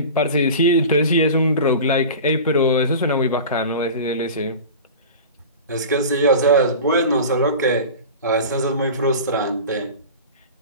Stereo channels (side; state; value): both; inverted; correlation -0.34